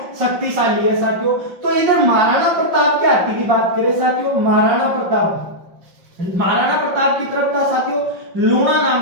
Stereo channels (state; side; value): late; left; 5.6 ms